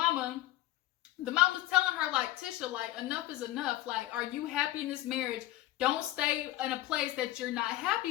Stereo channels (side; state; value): right; quieter; 15.5 dB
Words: The mama's telling her, like, Tisha, like, enough is enough. Like, are you happy in this marriage? Don't stay in a place that you're not